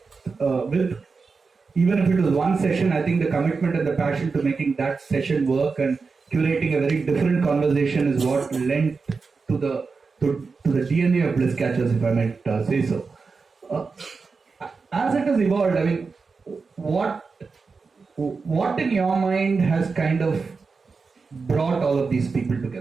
even if it was one session, I think the commitment and the passion to making that session work and curating a very different conversation is what lent to the DNA of Bliss Catchers, if I might say so. As it has evolved, I mean, what in your mind has kind of brought all of these people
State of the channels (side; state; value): left; quieter; 4.7 dB